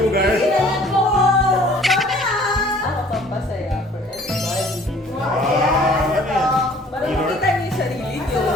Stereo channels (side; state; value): both; normal; correlation 0.54